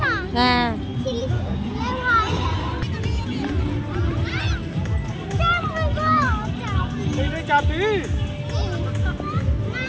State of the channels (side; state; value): both; identical; correlation 1.00